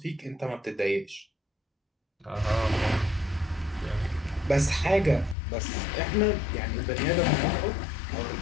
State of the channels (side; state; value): right; drops out; at 5.4 s